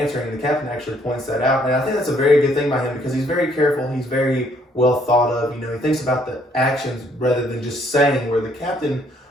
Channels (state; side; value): normal; both; correlation 0.66